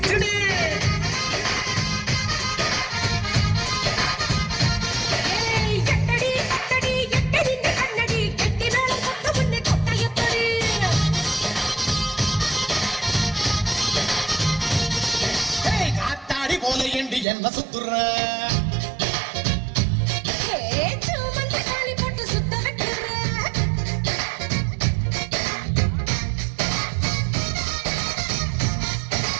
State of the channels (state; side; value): drops out; left; at 17.2 s